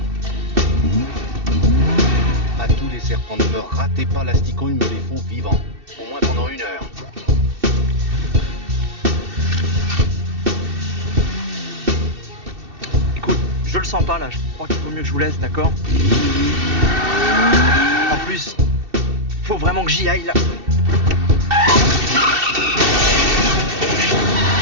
À tous les serpents, ne me ratez pas l'asticot, ils me les font vivants. Au moins pendant 1 heure. Écoute, je le sens pas là, je crois qu'il vaut mieux que je vous laisse, d'accord? En plus, faut vraiment que j'y aille là.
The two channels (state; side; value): late; left; 2.7 ms